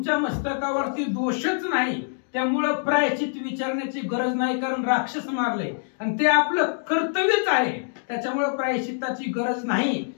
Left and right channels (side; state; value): right; silent; digital silence